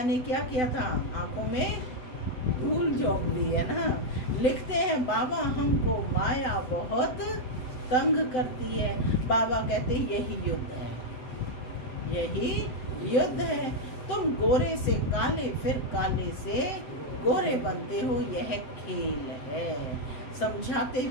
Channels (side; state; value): right; late; 7.9 ms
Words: ने क्या किया था? आंखों में धूल झोंक दी है ना। लिखते हैं बाबा हमको माया बहुत तंग करती है। बाबा कहते यही युद्ध है, यही युद्ध है। तुम गोरे से काले, फिर काले से गोरे बनते हो, यह खेल है। समझाते